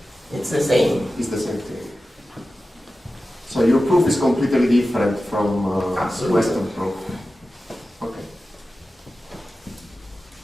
it's the same. it's the same thing. So your proof is completely different from Absolutely. Western proof. Okay.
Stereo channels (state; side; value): normal; both; correlation 0.94